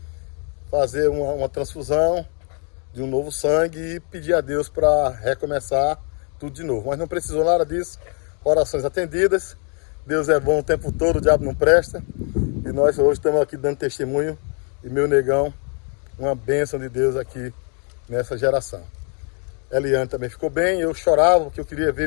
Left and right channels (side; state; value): right; quieter; 39.7 dB